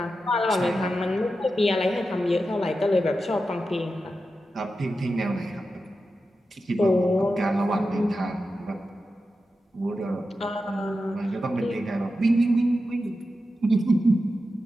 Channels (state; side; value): normal; both; correlation 0.91